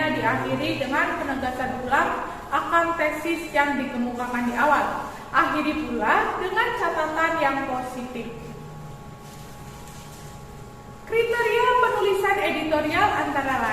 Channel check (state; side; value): identical; both; correlation 1.00